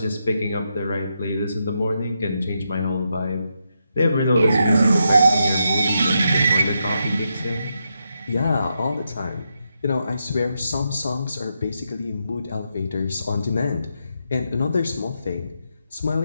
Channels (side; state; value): both; inverted; correlation -0.83